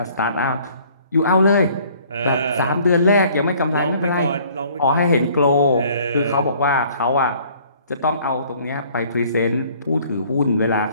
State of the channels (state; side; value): inverted; both; correlation -0.56